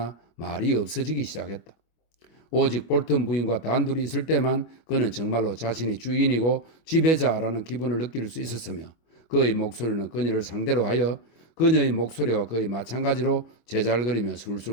말이 없어지기 시작했다. 오직 볼턴 부인과 단둘이 있을 때만 그는 정말로 자신이 주인이고 지배자라는 기분을 느낄 수 있었으며 그의 목소리는 그녀를 상대로 하여 그녀의 목소리와 거의 마찬가지로 제잘거리며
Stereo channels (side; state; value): right; late; 25 ms